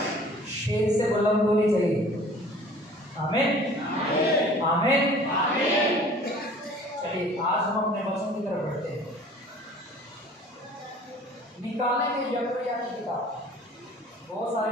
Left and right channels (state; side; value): normal; both; correlation 0.49